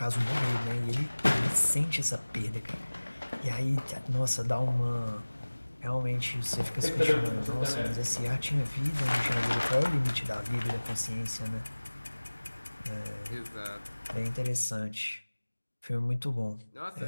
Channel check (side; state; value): both; inverted; correlation -1.00